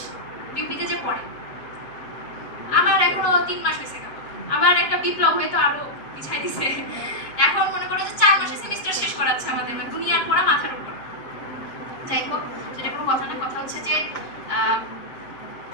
বিউপিতে যে পড়ে। আমার এখনো 3 মাস হয়েছে, আবার একটা বিপ্লব হয়তো আরো পিছাই দিছে। এখন মনে করো যে 4 মাসে সেমিস্টার শেষ করাচ্ছে আমাদের, দুনিয়ার পড়া মাথার উপর। যাই হোক, সেটা কোনো কথা না। কথা হচ্ছে যে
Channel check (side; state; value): right; late; 7.4 ms